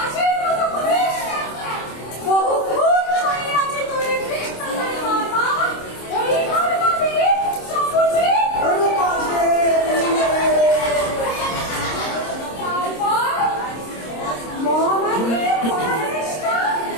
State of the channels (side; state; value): right; late; 26 ms